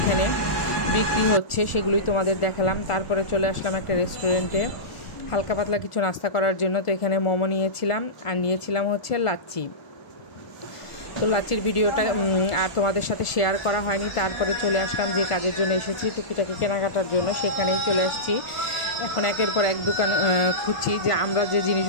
বিক্রি হচ্ছে, সেগুলোই তোমাদের দেখালাম। তারপরে চলে আসলাম একটা রেস্টুরেন্টে হালকা পাতলা কিছু নাস্তা করার জন্য। তো এখানে মোমো নিয়েছিলাম, আর নিয়েছিলাম হচ্ছে লাচ্ছি। তো লাচ্ছির ভিডিওটা আর তোমাদের সাথে শেয়ার করা হয়নি। তারপরে চলে আসলাম যে কাজের জন্য এসেছি, টুকিটাকি কেনাকাটার জন্য, সেখানেই চলে আসছি। এখন একের পর এক দোকান খুঁজছি যে আমরা যে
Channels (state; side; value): late; right; 1.4 ms